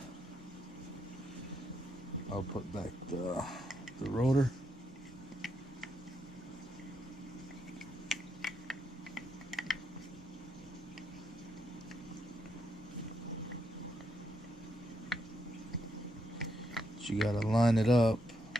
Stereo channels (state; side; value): normal; both; correlation 0.80